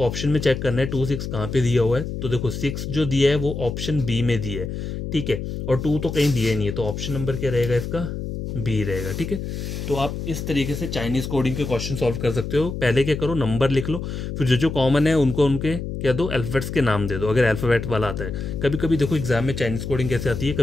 ऑप्शन में चेक करना है 2-6 कहाँ पे दिया हुआ है। तो देखो 6 जो दिया है वो ऑप्शन बी में दिया है, ठीक है, और 2 तो कहीं दिया नहीं है, तो ऑप्शन नंबर क्या रहेगा इसका, बी रहेगा, ठीक है। तो आप इस तरीके से चाइनीज़ कोडिंग के क्वेश्चन सॉल्व कर सकते हो। पहले क्या करो, नंबर लिख लो, फिर जो जो कॉमन है उनको उनके क्या दो, अल्फ़ाबेट्स के नाम दे दो, अगर अल्फ़ाबेट वाला आता है। कभी कभी देखो एग्जाम में चाइनीज़ कोडिंग कैसे आती है,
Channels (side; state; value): left; noise; hum, 5 dB below the sound